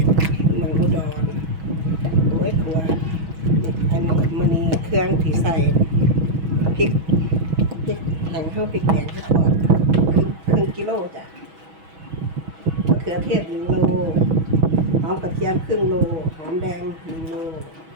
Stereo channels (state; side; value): late; left; 6.2 ms